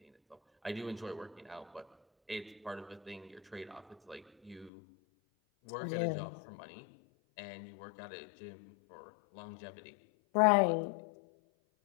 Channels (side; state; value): right; drops out; at 4.7 s